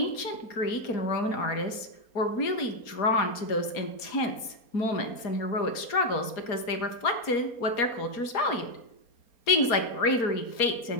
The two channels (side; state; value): right; late; 4.3 ms